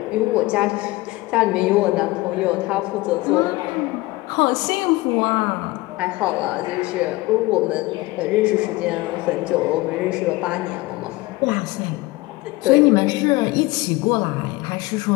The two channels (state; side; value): quieter; right; 20.6 dB